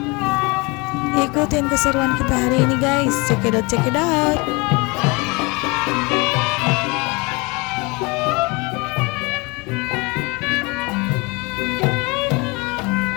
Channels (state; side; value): quieter; right; 27.1 dB